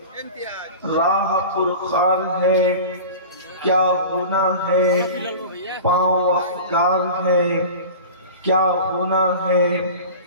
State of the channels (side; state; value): both; inverted; correlation -0.35